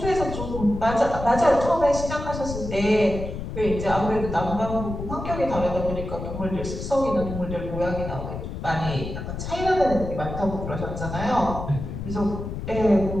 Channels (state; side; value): noise; left; rumble, 7 dB below the sound